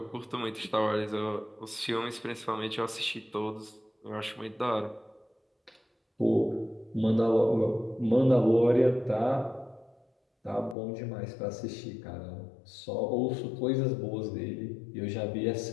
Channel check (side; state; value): right; drops out; at 10.8 s